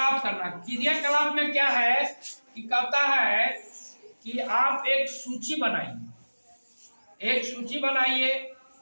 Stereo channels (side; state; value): both; inverted; correlation -1.00